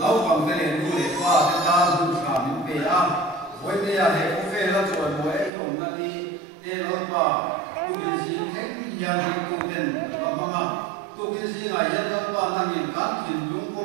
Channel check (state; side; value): drops out; left; at 5.5 s